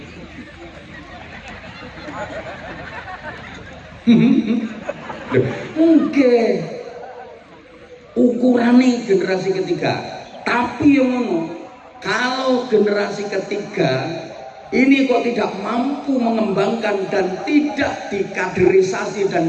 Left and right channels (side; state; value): both; identical; correlation 1.00